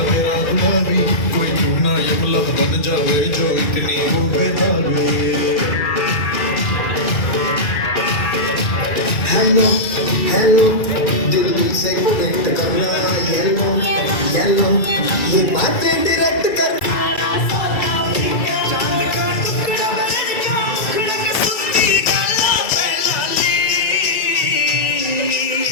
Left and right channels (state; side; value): late; right; 2.3 ms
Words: तेरा गुलाबी कोई चूना यमला बन जावे जो इतनी हो बेताबी हेलो हेलो दिल दिल से कनेक्ट करना येलो येलो ये बातें डायरेक्ट करना